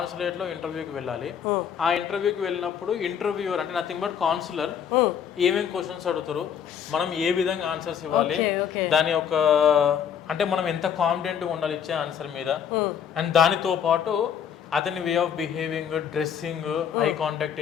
ఇంటర్వ్యూకి వెళ్ళాలి. ఆ ఇంటర్వ్యూకి వెళ్ళినప్పుడు ఇంటర్వ్యూవర్ అంటే నథింగ్ బట్ కాన్సులర్ ఏమేమి క్వశ్చన్స్ అడుగుతారు, మనం ఏ విధంగా ఆన్సర్స్ ఇవ్వాలి, దాని యొక్క అంటే మనం ఎంత కాన్ఫిడెంట్గా ఉండాలి ఇచ్చే ఆన్సర్ మీద, అండ్ దానితో పాటు అతని way of behaving, dressing, eye contact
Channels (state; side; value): quieter; right; 8.2 dB